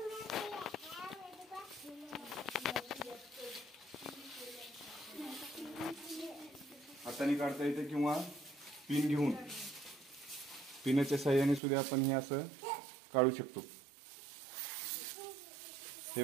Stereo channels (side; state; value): left; drops out; at 11.6 s